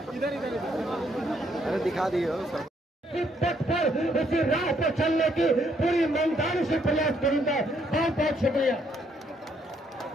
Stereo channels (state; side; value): normal; both; correlation 0.71